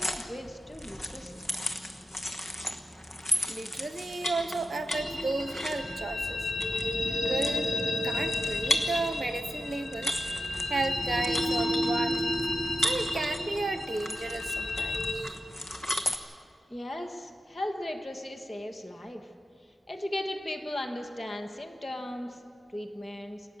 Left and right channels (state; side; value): normal; both; correlation 0.90